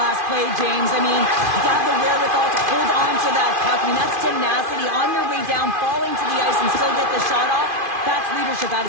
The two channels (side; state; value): left; late; 2.5 ms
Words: play, James. I mean, you have the wherewithal to hold on to that puck. I mean, that's tenacity on your way down, falling to the ice and still get the shot off. That's leadership at